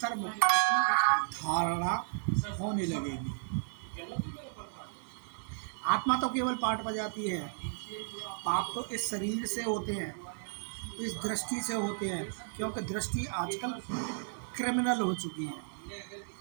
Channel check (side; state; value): left; silent; digital silence